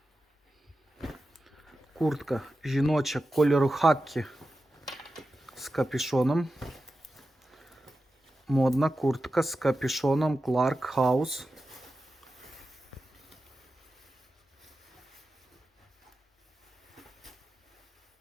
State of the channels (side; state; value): both; normal; correlation 0.92